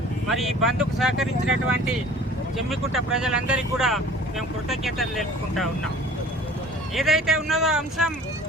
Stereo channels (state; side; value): normal; both; correlation 0.47